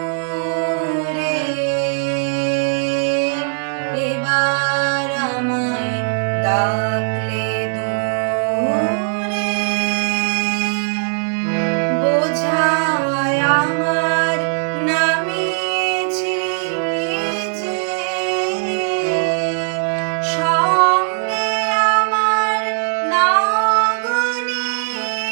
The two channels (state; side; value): silent; left; digital silence